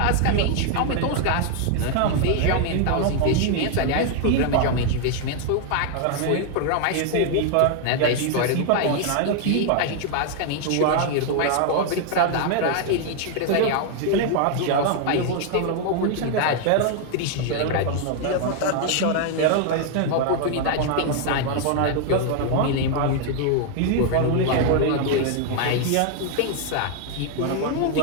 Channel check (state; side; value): different; both; correlation 0.00